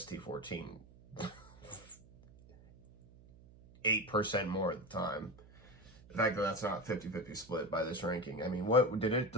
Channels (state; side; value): noise; right; hum, 23 dB below the sound